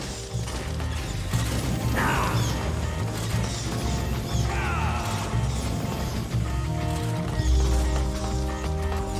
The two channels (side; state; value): both; identical; correlation 1.00